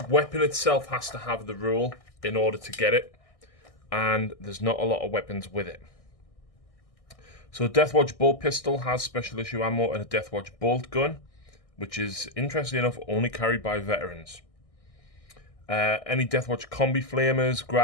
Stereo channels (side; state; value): right; late; 1.6 ms